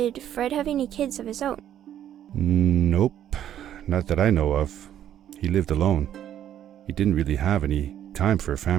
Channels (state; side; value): quieter; left; 10.8 dB